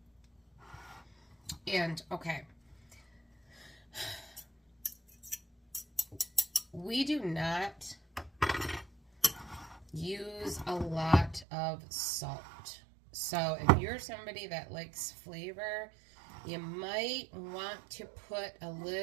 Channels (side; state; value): left; drops out; at 11.5 s